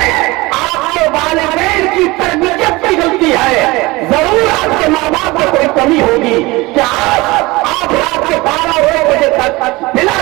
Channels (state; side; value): quieter; left; 22.1 dB